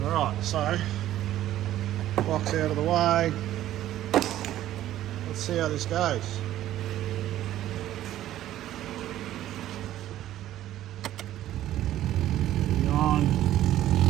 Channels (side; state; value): left; quieter; 13.2 dB